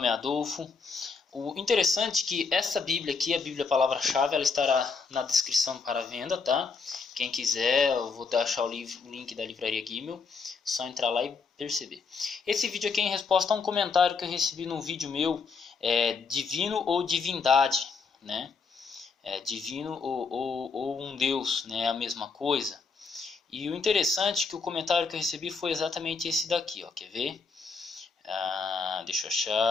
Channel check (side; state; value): right; quieter; 4.9 dB